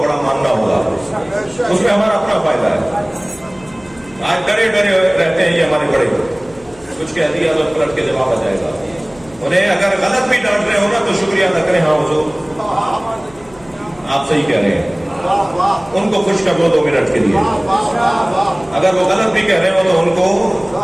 بڑا ماننا ہوگا، اس میں ہمارا اپنا فائدہ ہے۔ آج ڈرے ڈرے رہتے ہیں یہ ہمارے بڑے، کچھ کہہ دیا تو پلٹ کے جواب آ جائے گا۔ انہیں اگر غلط بھی ڈانٹ رہے ہو نا تو شکریہ ادا کریں، ہاں حضور آپ صحیح کہہ رہے ہیں، ان کو خوش کر دو 2 منٹ کے لیے۔ اگر وہ غلط بھی کہہ رہے ہو تو ان کو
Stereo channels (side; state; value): left; noise; hum, 25 dB below the sound